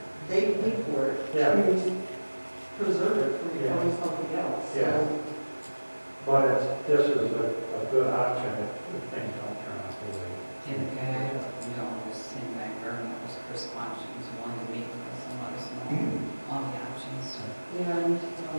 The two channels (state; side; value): inverted; both; correlation -1.00